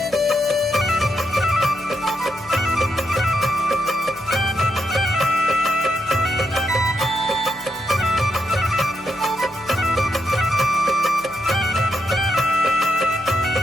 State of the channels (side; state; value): right; noise; hum, 24 dB below the sound